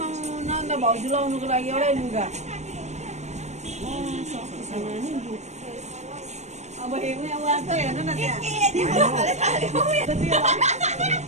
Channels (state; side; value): late; left; 0.33 ms